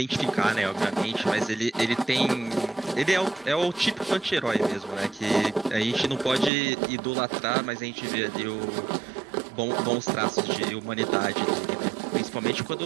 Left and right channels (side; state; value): left; drops out; at 6.5 s